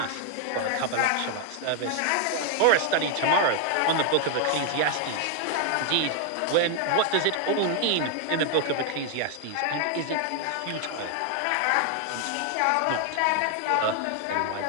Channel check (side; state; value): both; different; correlation 0.00